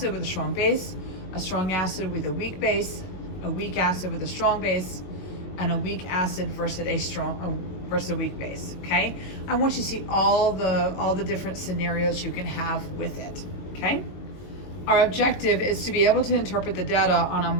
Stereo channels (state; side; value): late; right; 22 ms